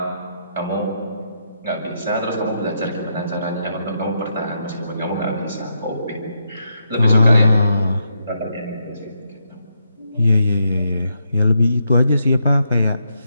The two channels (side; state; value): both; inverted; correlation -0.81